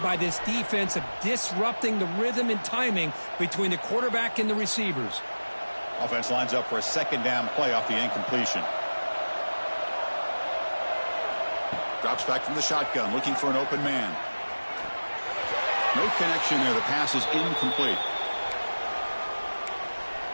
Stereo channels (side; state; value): both; inverted; correlation -1.00